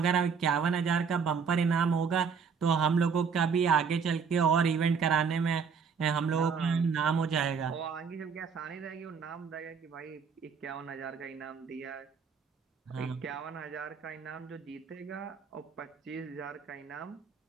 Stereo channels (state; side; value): quieter; left; 6.0 dB